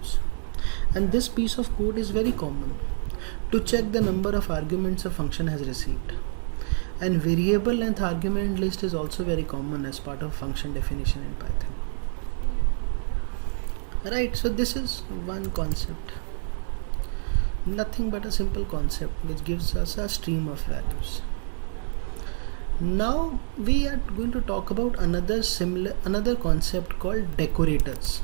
And this piece of code is very common to check the number of arguments a function has received. And variable length argument list is also very common as part of function definition in Python. Right, so this is one concept. Nothing but a simple concept which gives us a stream of values. Now we are going to talk about another concept called decorators.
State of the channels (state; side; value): silent; left; 60 dB below the other